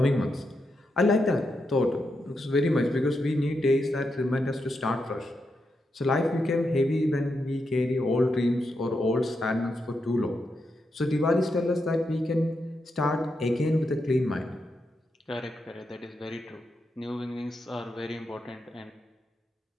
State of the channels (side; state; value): both; normal; correlation 0.84